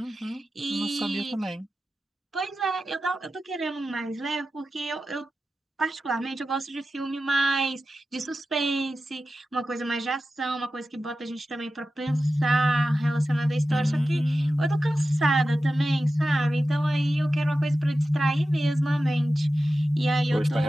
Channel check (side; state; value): both; normal; correlation 0.93